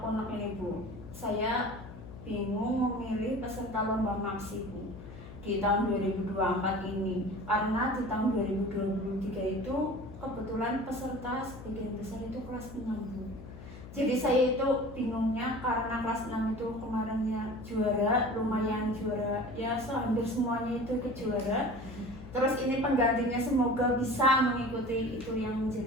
ini Bu. Saya bingung memilih peserta lomba maksi Bu di tahun 2024 ini, karena di tahun 2023 itu kebetulan peserta sebagian besar itu kelas 6 Bu. Jadi saya itu bingungnya karena kelas 6 itu kemarinnya juara, lumayan juara, ya hampir semuanya itu ikut juara. Terus ini penggantinya semoga bisa mengikuti itu yang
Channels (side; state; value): left; noise; hum, 14 dB below the sound